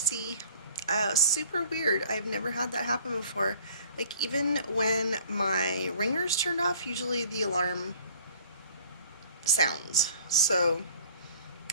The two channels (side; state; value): both; inverted; correlation -0.52